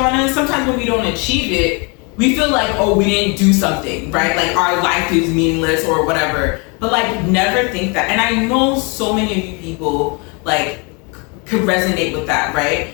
us. Sometimes when we don't achieve it, we feel like, oh, we didn't do something, right? Like our life is meaningless or whatever. But like, never think that. And I know so many of you people like could resonate with that, right?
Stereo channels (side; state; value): right; quieter; 32.1 dB